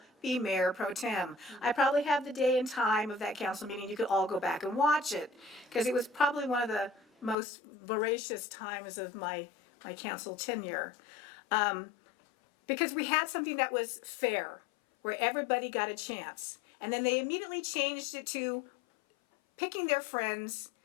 be mayor pro tem. I probably have the day and time of that council meeting. You could all go back and watch it because it was probably one of the most voracious times of my council tenure. Because we had something that was fair, where everybody got a chance. And then they immediately changed it to picking their friends,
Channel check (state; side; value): drops out; right; at 7.4 s